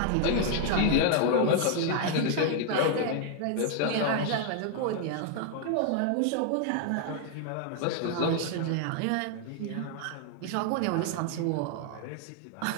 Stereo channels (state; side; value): different; both; correlation 0.00